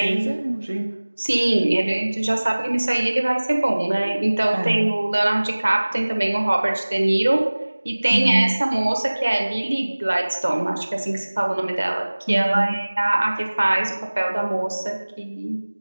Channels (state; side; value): inverted; both; correlation -1.00